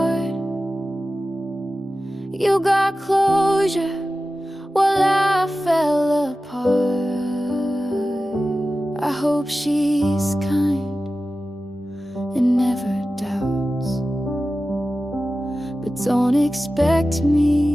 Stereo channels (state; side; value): normal; both; correlation 0.94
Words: You got closure while I fell apart. I hope she's kind and never doubts, but don't expect